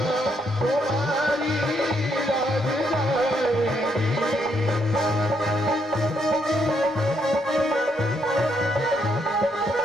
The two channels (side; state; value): both; normal; correlation 0.74